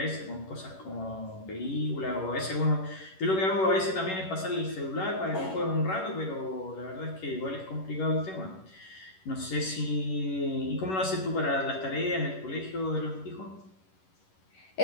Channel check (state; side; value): late; right; 11 ms